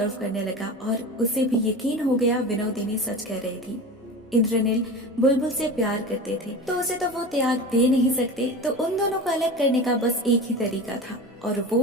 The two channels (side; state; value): both; normal; correlation 0.31